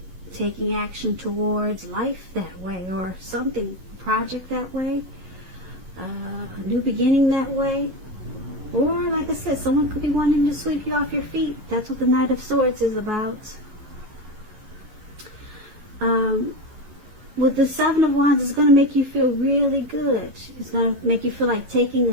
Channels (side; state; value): left; late; 11 ms